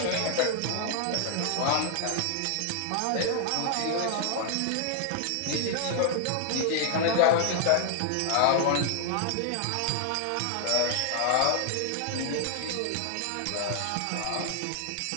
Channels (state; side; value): different; both; correlation 0.00